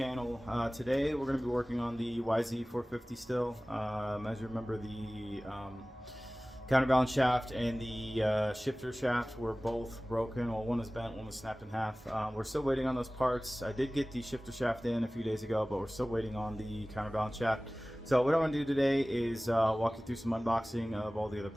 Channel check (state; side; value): normal; both; correlation 0.98